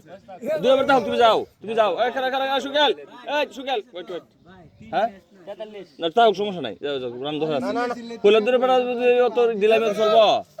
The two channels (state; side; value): identical; both; correlation 1.00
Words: দুই নম্বর দাও তুমি যাও এখানে এখানে সুকেল এই সুকেল ওয়েট ওয়েট হ্যাঁ না তাও সমস্যা নাই যাও যাও রান ধরে আছে ফুলের দূরে বেড়া অত দিলাম চলব